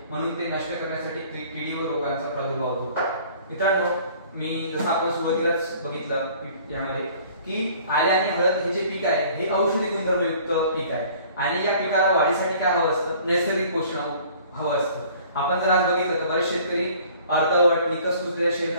म्हणून ते नष्ट करण्यासाठी किडी व रोगांचा प्रादुर्भाव होतो. मित्रांनो मी जसं आपण सुरुवातीलाच बघितलं यामध्ये की आले आणि हळद हे जे पीक आहे हे औषधी गुणधर्मयुक्त पीक आहे, आणि या पिकाला वाढीसाठी काय हवं असतं? नैसर्गिक पोषण हवं असतं. आपण जर आज बघितलं तर बरेच शेतकरी अर्धवट निकस कुजलेल्या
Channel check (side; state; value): both; inverted; correlation -0.52